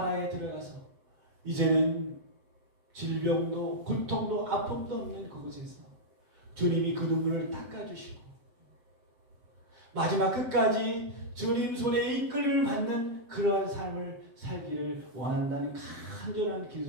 들어가서 이제는 질병도 고통도 아픔도 없는 그곳에서 주님이 그 눈물을 닦아주시고 마지막 끝까지 주님 손에 이끌림을 받는 그러한 삶을 살기를 원한다는 간절한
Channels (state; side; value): late; left; 7.8 ms